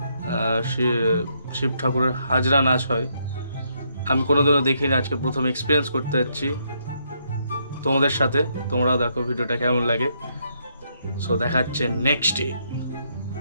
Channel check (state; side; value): inverted; both; correlation -0.75